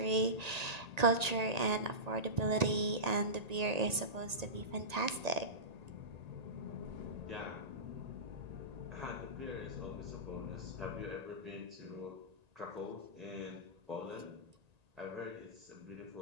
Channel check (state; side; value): late; left; 1.8 ms